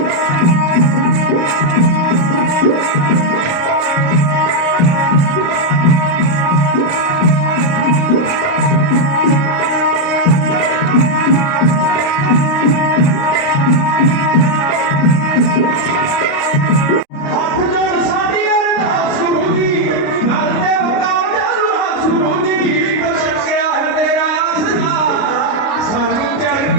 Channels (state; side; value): late; right; 29 ms